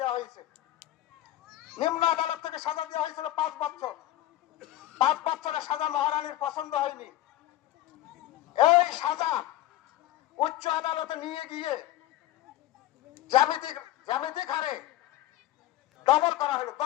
হয়েছে। নিম্ন আদালত থেকে সাজা দেওয়া হয়েছিল 5 বছর। 5 বছরের সাজা মহারানীর পছন্দ হয়নি। এই সাজা উচ্চ আদালতে নিয়ে গিয়ে জ্যামিতিক হারে ডবল করা হলো,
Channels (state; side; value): quieter; right; 14.7 dB